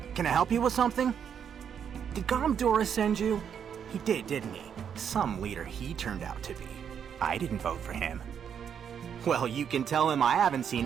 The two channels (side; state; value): left; quieter; 8.0 dB